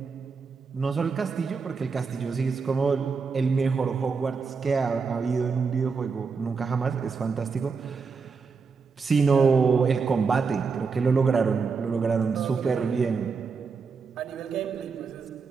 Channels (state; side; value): quieter; left; 5.1 dB